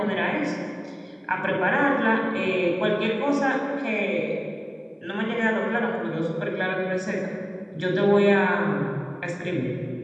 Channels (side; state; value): both; identical; correlation 1.00